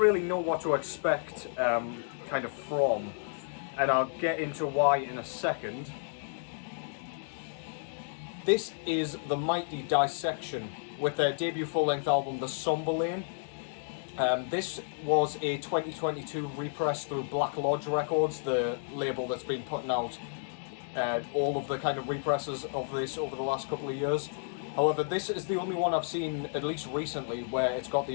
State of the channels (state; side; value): silent; right; digital silence